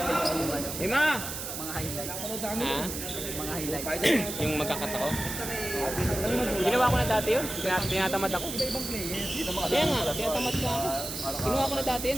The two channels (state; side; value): noise; right; hiss, 6 dB below the sound